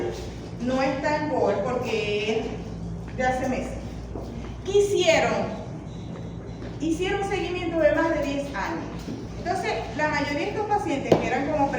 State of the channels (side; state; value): both; identical; correlation 1.00